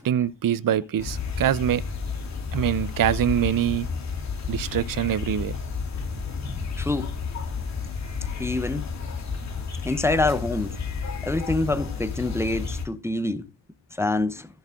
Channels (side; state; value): both; normal; correlation 0.39